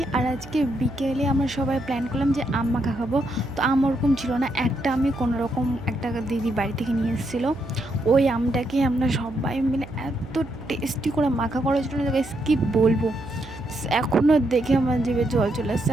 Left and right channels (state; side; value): noise; right; hum, 16 dB below the sound